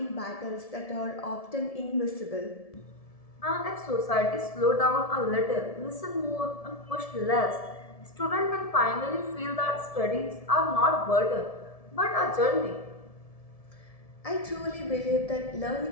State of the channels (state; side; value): late; right; 1.7 ms